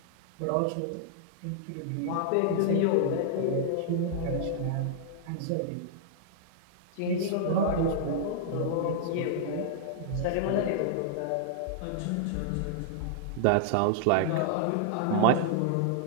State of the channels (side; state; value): both; different; correlation -0.01